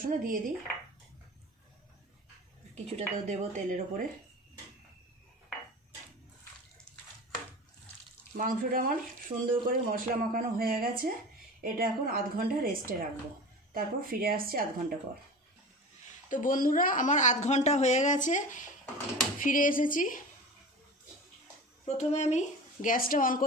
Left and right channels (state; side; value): normal; both; correlation 0.34